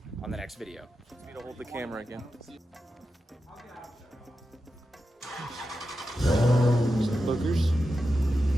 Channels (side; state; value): both; normal; correlation 0.90